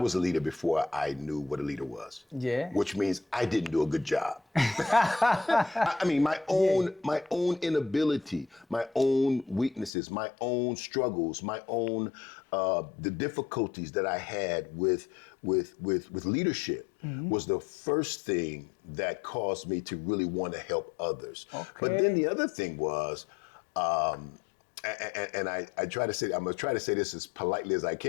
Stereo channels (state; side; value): drops out; right; at 9.9 s